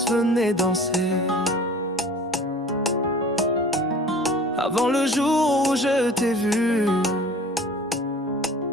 venait danser. Avant le jour où je t'ai vu,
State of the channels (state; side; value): normal; both; correlation 0.45